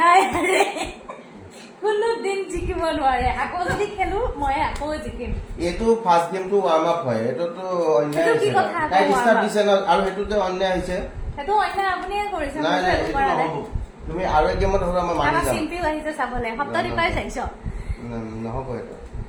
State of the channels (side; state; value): both; identical; correlation 1.00